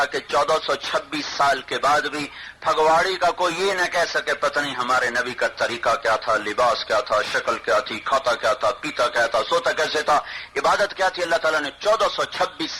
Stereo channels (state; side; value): identical; both; correlation 1.00